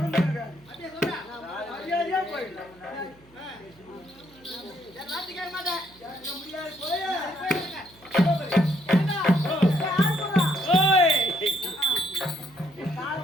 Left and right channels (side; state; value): right; noise; hum, 27 dB below the sound